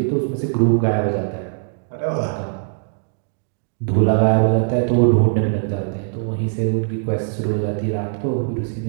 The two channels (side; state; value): left; silent; digital silence